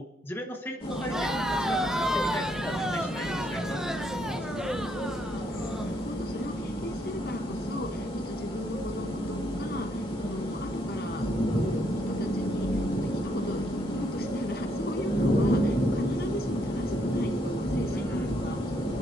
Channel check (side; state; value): both; normal; correlation 0.74